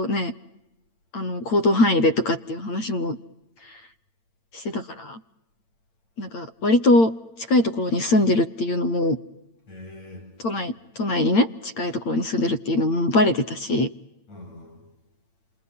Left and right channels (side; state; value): right; late; 8.8 ms